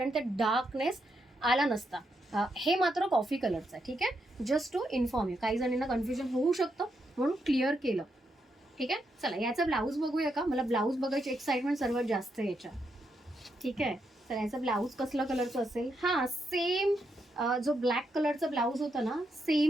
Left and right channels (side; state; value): both; normal; correlation 0.81